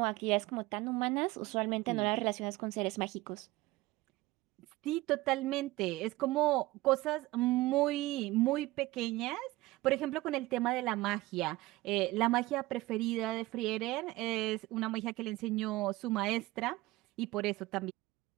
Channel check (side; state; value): left; quieter; 19.2 dB